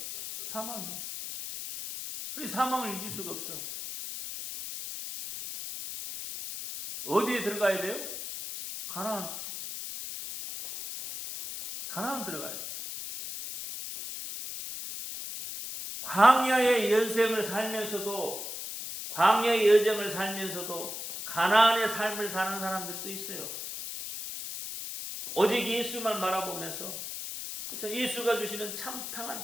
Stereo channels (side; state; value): left; noise; hiss, 7 dB below the sound